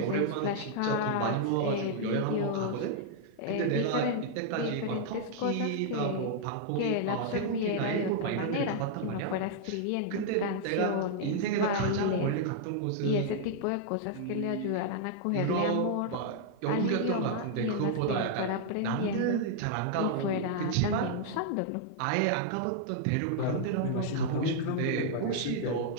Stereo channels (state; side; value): different; both; correlation -0.01